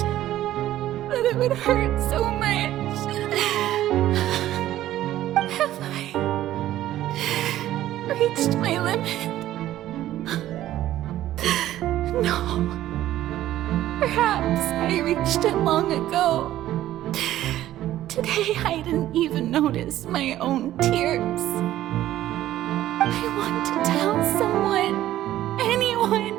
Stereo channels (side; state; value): left; quieter; 13.6 dB